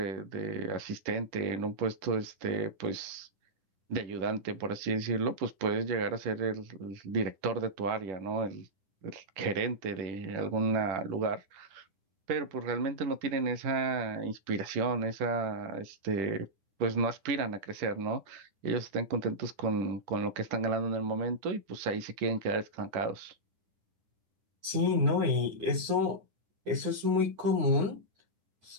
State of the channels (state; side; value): late; left; 9.8 ms